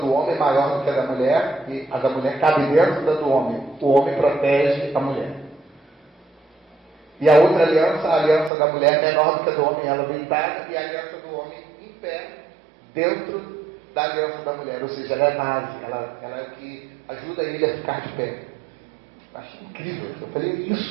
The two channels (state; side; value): drops out; left; at 8.5 s